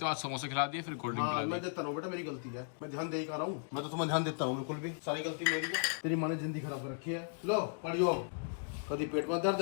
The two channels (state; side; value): silent; right; digital silence